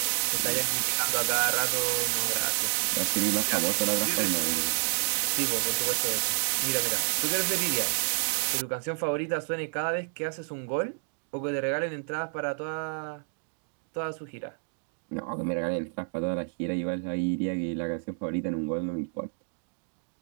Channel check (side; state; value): left; silent; digital silence